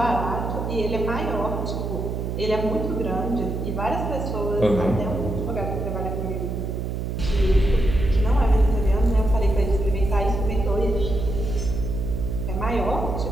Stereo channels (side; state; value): right; noise; hum, 3 dB below the sound